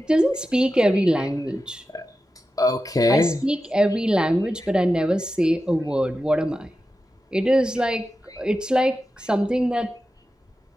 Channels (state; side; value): normal; both; correlation 0.92